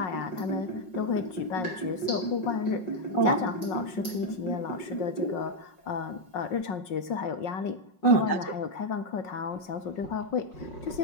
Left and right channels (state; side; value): late; right; 5.5 ms